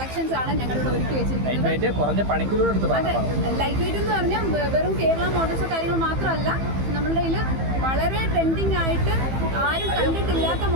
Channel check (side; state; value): left; late; 15 ms